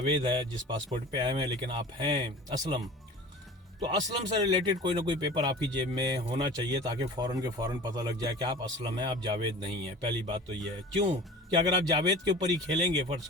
है जिस पासपोर्ट पे आए हैं, लेकिन आप हैं असलम, तो असलम से रिलेटेड कोई ना कोई पेपर आपकी जेब में होना चाहिए, ताकि फ़ौरन के फ़ौरन पता लग जाए कि आप असलम हैं, आप जावेद नहीं हैं। पहली बात तो ये है। क्यों कि अगर आप जावेद के ऊपर ही खेलेंगे, फ़र्ज़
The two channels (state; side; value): normal; both; correlation 0.38